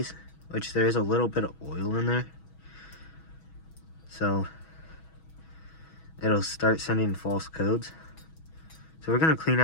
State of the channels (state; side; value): late; right; 6.2 ms